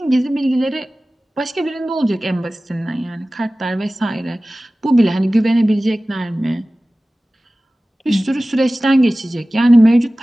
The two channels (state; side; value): normal; both; correlation 0.97